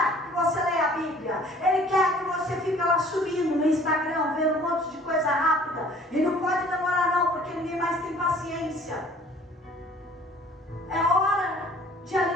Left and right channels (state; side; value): normal; both; correlation 0.53